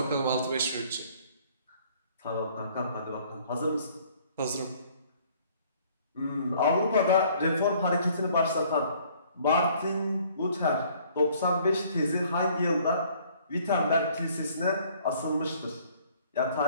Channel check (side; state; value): both; inverted; correlation -0.58